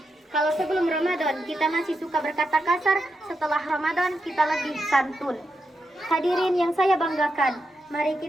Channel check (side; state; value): both; normal; correlation 0.85